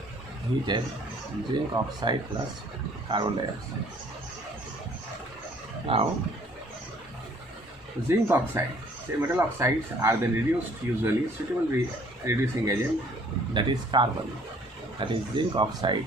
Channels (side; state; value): both; normal; correlation 0.58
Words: heated zinc oxide plus carbon dioxide. Now zinc oxide, say metal oxides are then reduced usually suitable reducing agent, that is carbon, that is zinc oxide